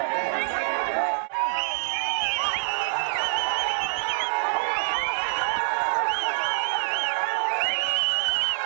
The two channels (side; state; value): left; silent; 61 dB below the other